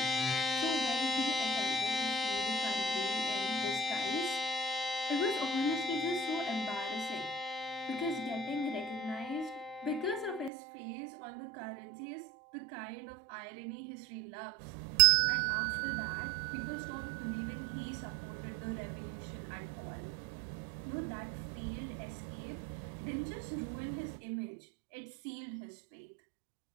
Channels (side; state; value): left; drops out; at 10.5 s